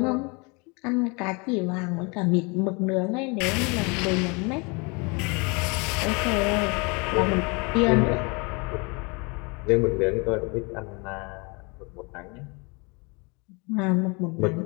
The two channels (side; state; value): right; quieter; 30.0 dB